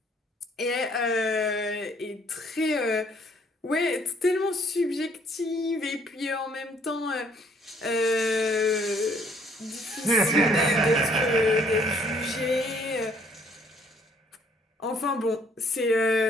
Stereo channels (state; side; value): normal; both; correlation 0.63